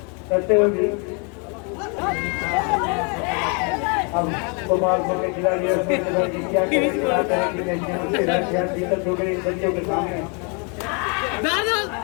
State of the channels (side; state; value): right; quieter; 35.5 dB